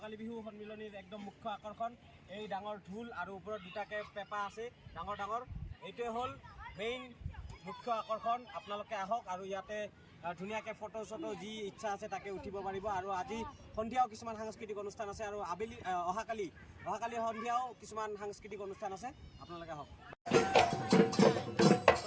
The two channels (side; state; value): both; identical; correlation 1.00